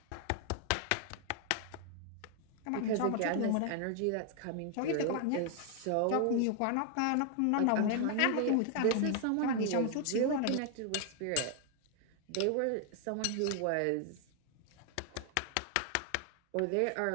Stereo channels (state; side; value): different; both; correlation 0.00